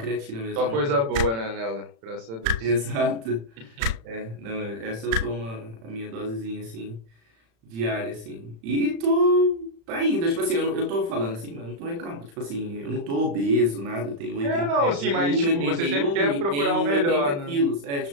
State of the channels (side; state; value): left; late; 35 ms